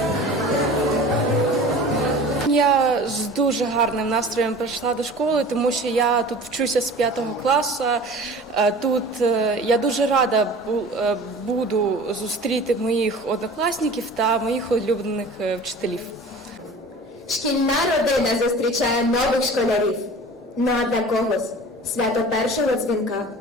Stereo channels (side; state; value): both; normal; correlation 0.41